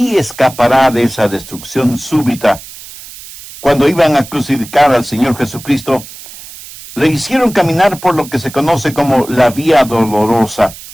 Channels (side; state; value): right; noise; hiss, 16 dB below the sound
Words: escapará de esa destrucción súbita. Cuando iban a crucificar al Señor Jesucristo, le hicieron caminar por lo que se conoce como la vía dolorosa.